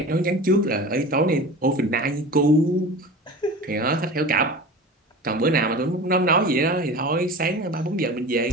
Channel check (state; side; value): normal; both; correlation 0.35